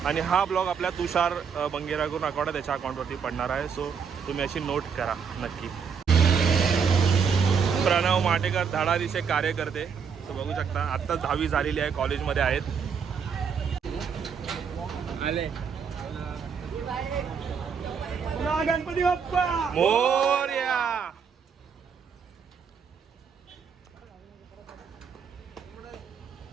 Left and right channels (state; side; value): quieter; left; 6.5 dB